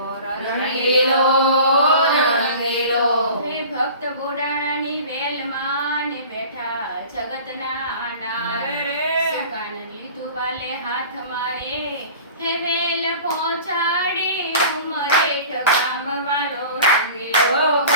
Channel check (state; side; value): inverted; both; correlation -0.41